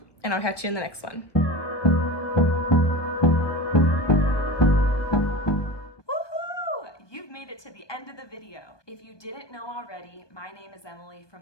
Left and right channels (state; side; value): late; right; 1.4 ms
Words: and I'll catch you in the next one. Woohoo! You've made it to the end of the video. If you didn't know already, my name is Emily from